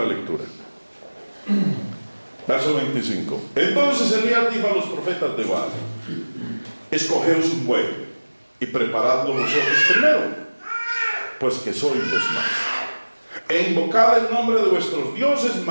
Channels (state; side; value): inverted; both; correlation -1.00